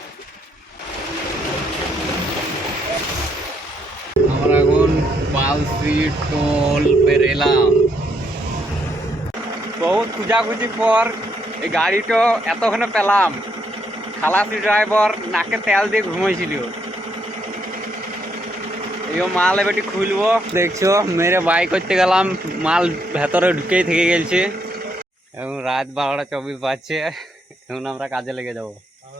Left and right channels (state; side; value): normal; both; correlation 0.74